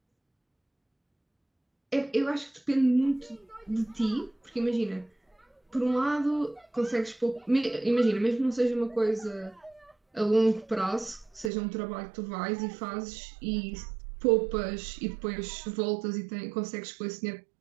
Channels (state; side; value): drops out; left; at 11.5 s